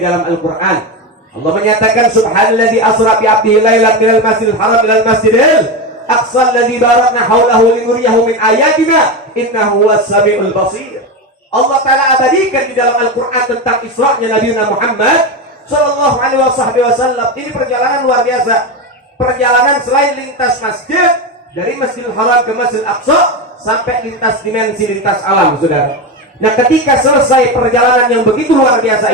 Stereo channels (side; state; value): both; normal; correlation 0.16